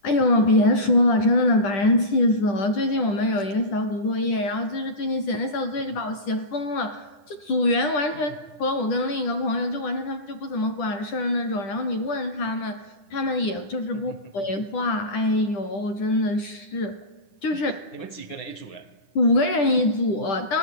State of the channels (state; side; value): late; right; 9.9 ms